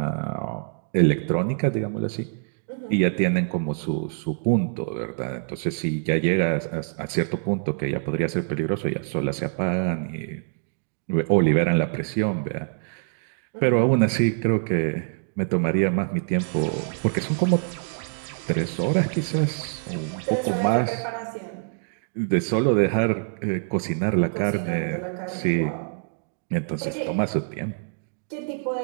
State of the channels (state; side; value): silent; left; digital silence